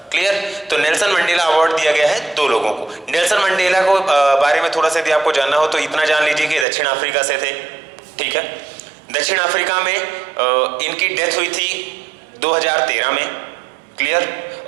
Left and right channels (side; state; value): left; drops out; at 6.7 s